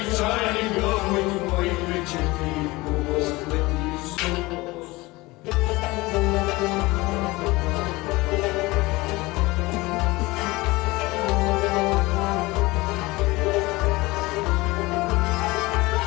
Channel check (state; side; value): quieter; right; 21.5 dB